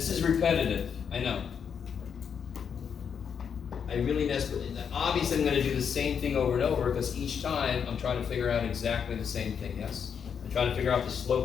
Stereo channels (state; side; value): quieter; right; 7.2 dB